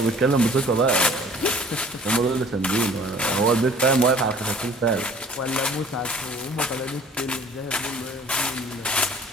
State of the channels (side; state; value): both; normal; correlation 0.51